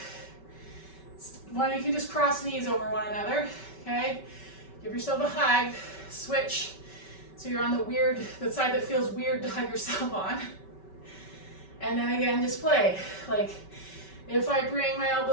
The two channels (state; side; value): late; right; 5.2 ms